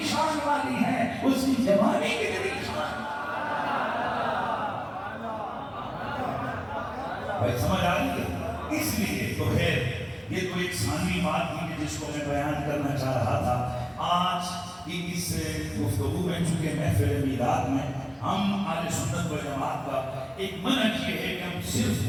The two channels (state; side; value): identical; both; correlation 1.00